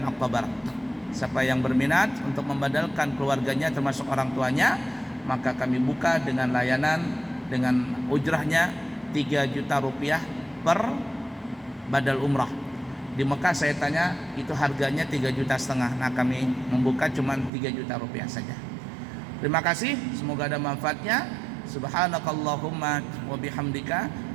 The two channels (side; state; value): left; drops out; at 17.5 s